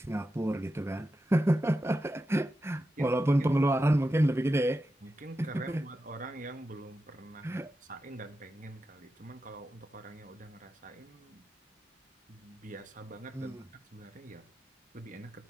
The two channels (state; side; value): normal; both; correlation 0.90